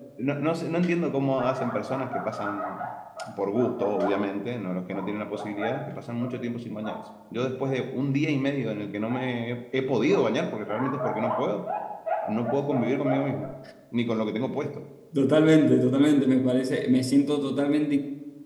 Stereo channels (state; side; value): identical; both; correlation 1.00